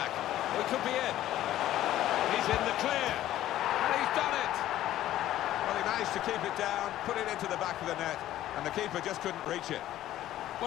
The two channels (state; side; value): quieter; right; 13.4 dB